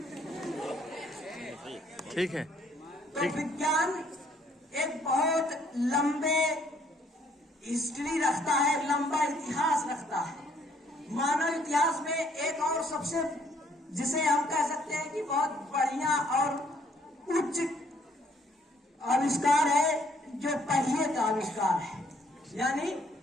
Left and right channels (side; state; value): both; normal; correlation 0.65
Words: ठीक है। तो विज्ञान एक बहुत लंबे हिस्ट्री रखता है, लंबा इतिहास रखता है। मानव इतिहास में एक और सबसे, जिसे हम कह सकते हैं कि बहुत बढ़िया और उच्च आविष्कार है, जो पहिए का आविष्कार है, यानी